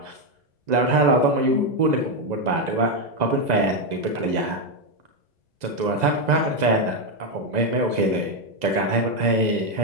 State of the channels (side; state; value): left; late; 2.0 ms